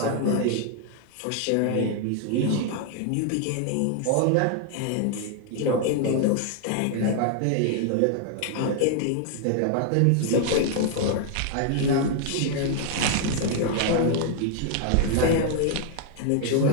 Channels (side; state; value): both; different; correlation 0.00